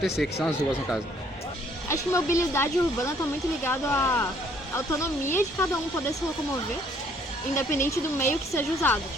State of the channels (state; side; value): normal; both; correlation 0.63